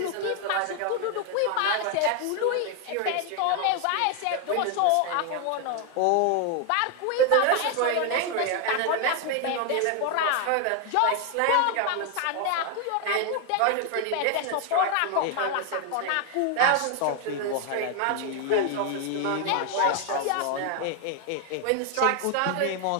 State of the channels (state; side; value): different; both; correlation 0.01